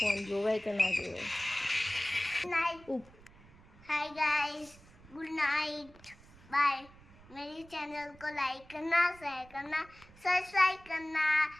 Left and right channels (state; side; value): noise; right; rumble, 23 dB below the sound